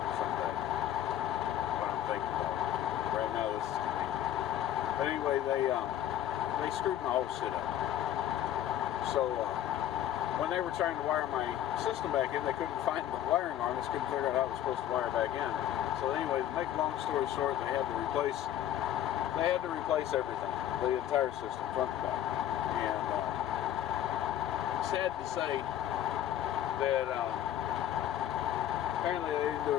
What I'm thinking about. Right now, this is convenient. But anyway, they screwed my whole shit up. So when they were trying to wire my system back in, they couldn't find the wiring harness, couldn't figure out how it was supposed to wire back in. So anyway, to make a long story short, they had to replace everything, the entire system, front to back. And sad to say that apparently they didn't do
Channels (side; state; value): right; quieter; 11.5 dB